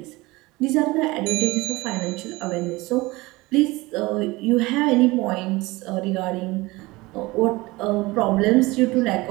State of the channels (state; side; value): quieter; left; 21.7 dB